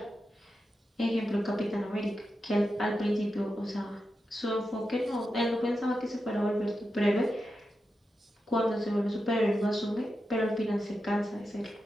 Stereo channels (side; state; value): both; normal; correlation 0.89